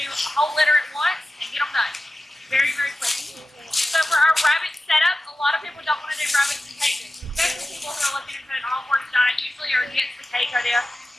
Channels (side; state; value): both; normal; correlation 0.94